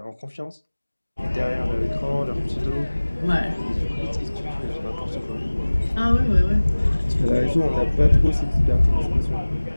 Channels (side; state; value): both; inverted; correlation -1.00